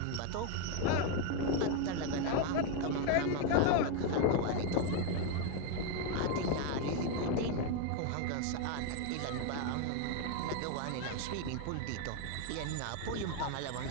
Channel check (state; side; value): different; both; correlation 0.01